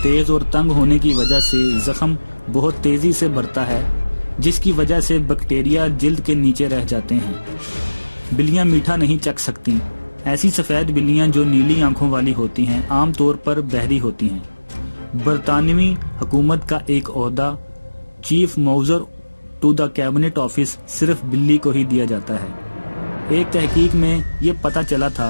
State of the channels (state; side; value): inverted; both; correlation -1.00